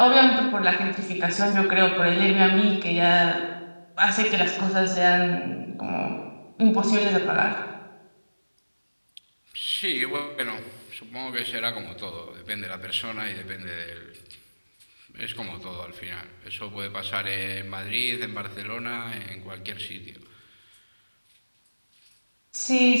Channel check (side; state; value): both; inverted; correlation -1.00